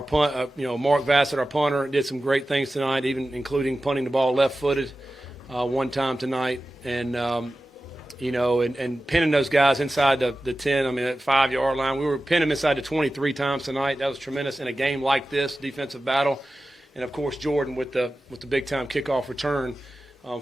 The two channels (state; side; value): normal; both; correlation 0.94